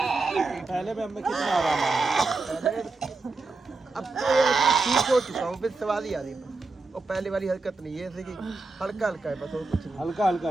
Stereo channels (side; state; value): left; quieter; 3.7 dB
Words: पहले भी हमें कितना आराम आया। अब तो ये ठीक हो चुका हूँ, फिर सवाल ही आ रही है। और पहले वाली हरकत नहीं है, जैसे कि हल्का हल्का है बस, और कुछ नहीं। हल्का हल्का